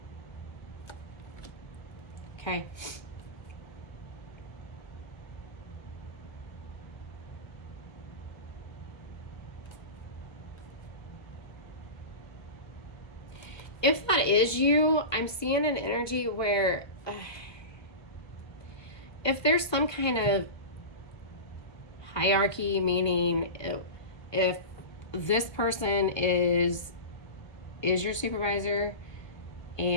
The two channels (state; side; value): late; right; 1.2 ms